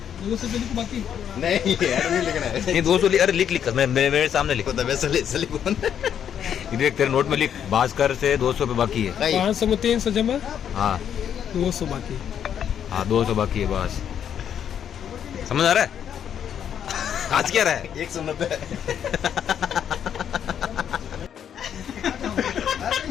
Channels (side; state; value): right; quieter; 8.9 dB